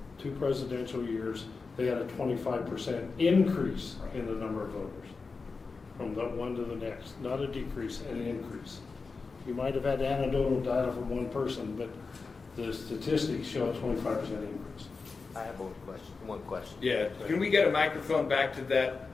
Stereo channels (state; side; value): quieter; right; 4.4 dB